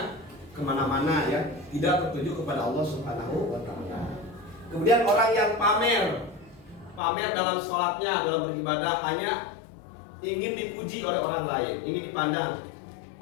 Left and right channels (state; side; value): drops out; right; at 7.0 s